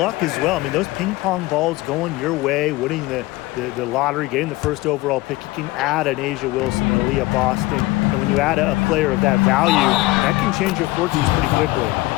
as well. I mean, those ping pong balls going your way, winning the lottery, getting the first overall pick, you can add an Asia Wilson, an Aaliyah Boston, and when you add a player of that value, that can change your fortunes pretty quickly.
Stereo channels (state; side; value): quieter; right; 19.9 dB